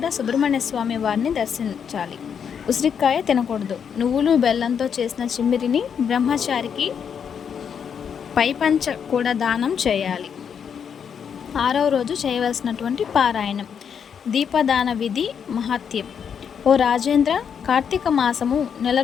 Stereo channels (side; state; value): right; quieter; 7.4 dB